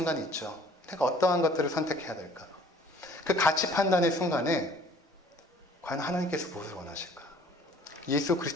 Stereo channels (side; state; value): both; normal; correlation 0.54